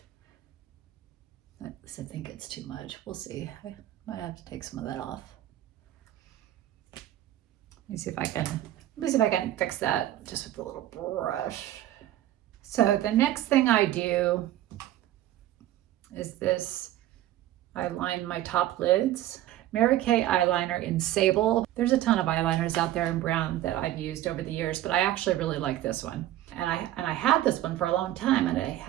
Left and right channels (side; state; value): left; quieter; 13.6 dB